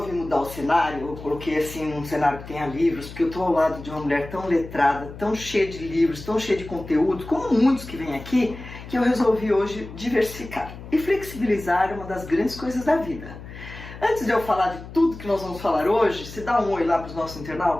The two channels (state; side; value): noise; left; hum, 14 dB below the sound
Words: mudar o cenário, eu coloquei assim um cenário que tenha livros, porque eu tô ao lado de uma mulher tão letrada, tão cheia de livros, tão cheia de conteúdo, como muitos que vêm aqui, que eu resolvi hoje diversificar. E flexibilizar é uma das grandes coisas da vida. Antes de eu falar de tudo que nós vamos falar hoje, se dá um oi lá para os nossos